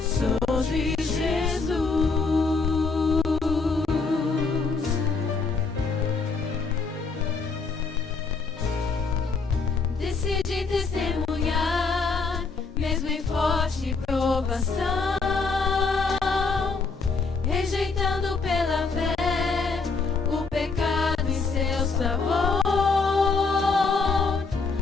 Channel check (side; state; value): right; quieter; 4.3 dB